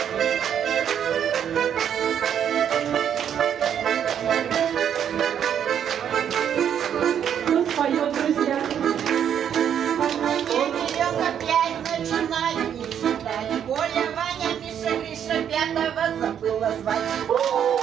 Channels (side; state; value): left; quieter; 9.0 dB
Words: Кто споет, друзья? Начинаю не считать. Коля, Ваня, Миша, Гриша, пятого забыла звать.